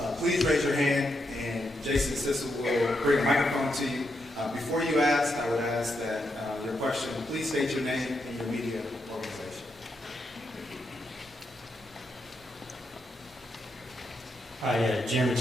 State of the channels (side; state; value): both; normal; correlation 0.82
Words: please raise your hand, and Jason Sissel will bring a microphone to you. Before you ask, I would ask that your question, please state your name and your media organization. Hi, Jeremy